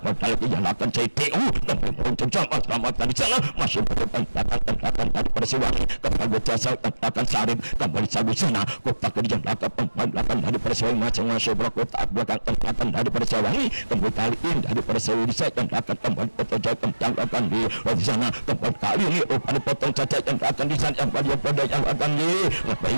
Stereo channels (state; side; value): inverted; both; correlation -1.00